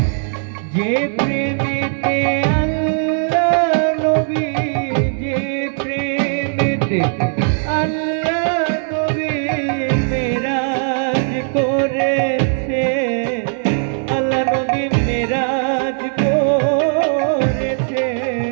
যে প্রেমেতে আল্লাহ নবী, যে প্রেমেতে আল্লাহ নবী মেরাজ করেছে, আল্লাহ নবী মেরাজ করেছে।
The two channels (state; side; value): silent; left; 64 dB below the other